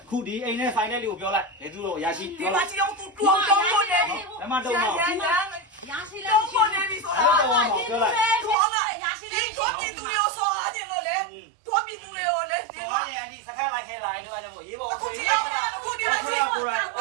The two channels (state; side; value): drops out; left; at 8.6 s